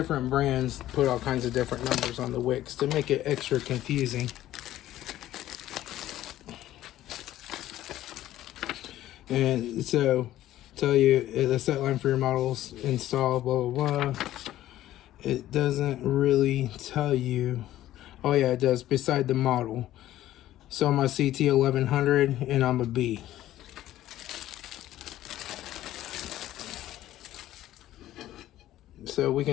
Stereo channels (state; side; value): quieter; right; 13.8 dB